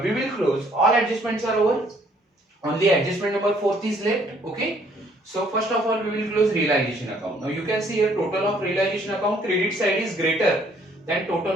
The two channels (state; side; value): normal; both; correlation 0.63